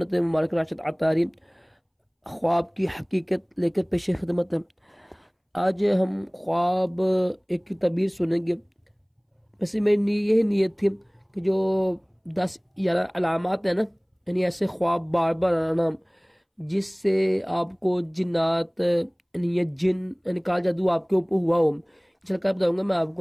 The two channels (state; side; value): identical; both; correlation 1.00